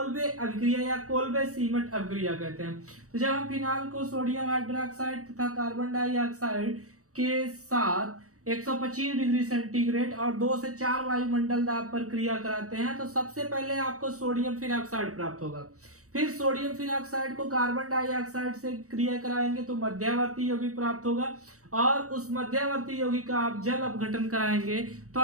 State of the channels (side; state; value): left; late; 0.65 ms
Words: अभिक्रिया या कोल्बे सीमेंट अभिक्रिया कहते हैं। तो जब हम फिनाल को सोडियम हाइड्रोक्साइड तथा कार्बन डाइऑक्साइड के साथ 125 डिग्री सेंटीग्रेड और 2 से 4 वायुमंडल दाब पर क्रिया कराते हैं तो सबसे पहले आपको सोडियम फिनॉक्साइड प्राप्त होगा। फिर सोडियम फिनॉक्साइड को कार्बन डाइऑक्साइड से क्रिया कराएंगे तो मध्यवर्ती यौगिक प्राप्त होगा, और उस मध्यवर्ती यौगिक का आप जल अपघटन कराएंगे तो